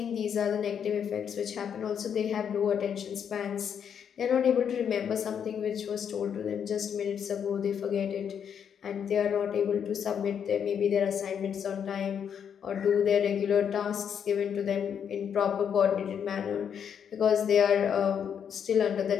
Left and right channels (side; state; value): right; quieter; 8.0 dB